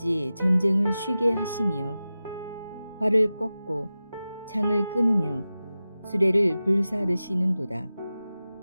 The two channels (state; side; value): inverted; both; correlation -0.95